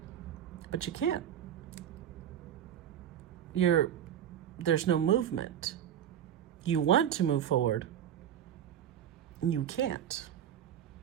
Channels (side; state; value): left; quieter; 10.1 dB